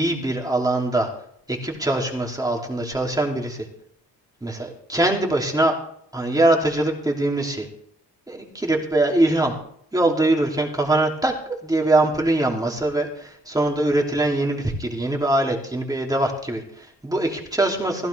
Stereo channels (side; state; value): both; normal; correlation 0.73